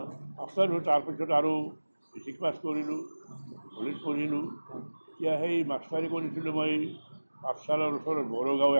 মাষ্টাৰ হ'ল। তাৰপিছত আৰু মেট্ৰিক পাছ কৰিলোঁ, কলেজ পঢ়িলোঁ। এতিয়া সেই মাষ্টাৰী কৰিছিলোঁ মই পাঠশালাৰ ওচৰত বড়োগাঁও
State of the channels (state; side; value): inverted; both; correlation -1.00